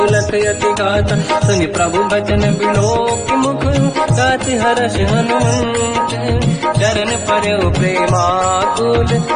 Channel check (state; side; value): identical; both; correlation 1.00